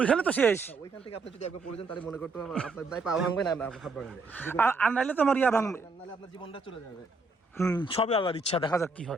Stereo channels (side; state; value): left; quieter; 3.7 dB